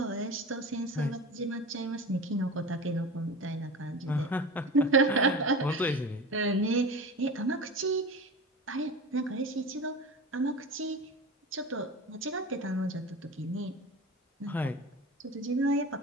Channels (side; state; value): both; normal; correlation 0.32